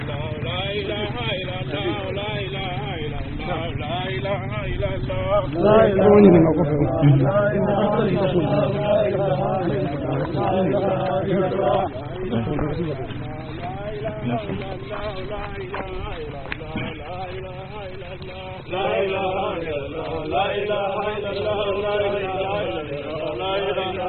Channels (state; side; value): identical; both; correlation 1.00